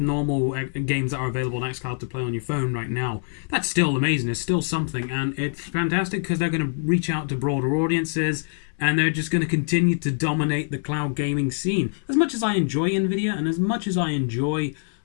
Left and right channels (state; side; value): silent; right; digital silence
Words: games that are available on xCloud to play on your phone right now, that's still amazing. It's still something, and it's fantastic because they're going to reach out to broader audiences, and they're just going to continue to dominate the cloud gaming scene. As much as I enjoy NVIDIA, and as much as I enjoy